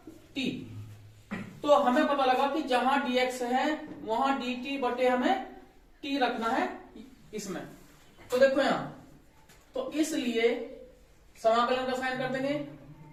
t। तो हमें पता लगा कि जहां dx है वहां dt बटे हमें t रखना है इसमें। तो देखो यहां, तो इसलिए समाकलन का साइन कर देंगे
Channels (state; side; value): identical; both; correlation 1.00